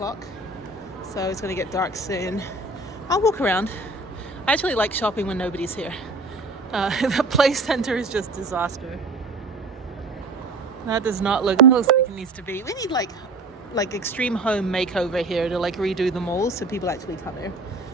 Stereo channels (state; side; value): quieter; left; 3.1 dB